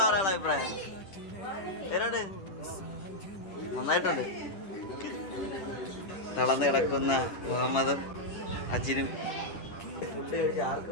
പറയാനുള്ള അഭിപ്രായം? പേരോട് നന്നായിട്ടുണ്ട്. തളർന്ന് കിടക്കുന്ന മുഹമ്മദും അജിനും ഫുഡ് കഴിച്ച്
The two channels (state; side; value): late; right; 10 ms